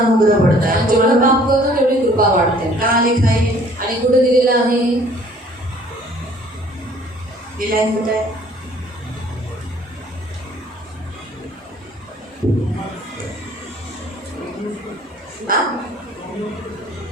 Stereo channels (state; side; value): normal; both; correlation 0.56